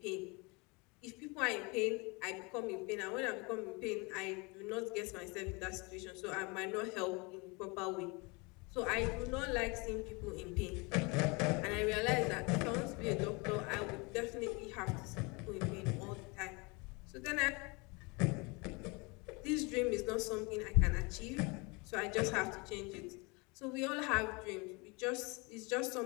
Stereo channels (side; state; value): right; quieter; 28.3 dB